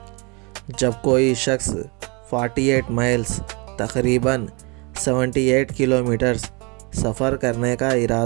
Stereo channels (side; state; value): left; quieter; 30.2 dB